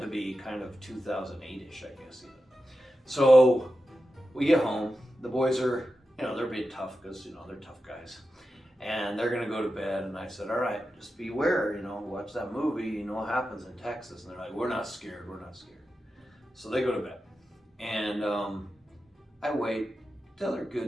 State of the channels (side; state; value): both; normal; correlation 0.91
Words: be kind of 2008-ish, I guess, even. So we get home. The boys are, they're being tough because, they're tough guys. And they're going to go to bed. And I said, all right, just beware, watch that movie. You know what happens in Texas. And they're like, we're not scared. We're not scared. So they go to bed. And I wait till they're good